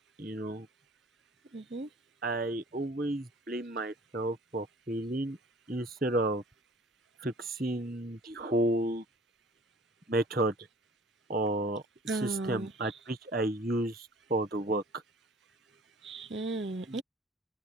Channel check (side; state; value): both; normal; correlation 0.49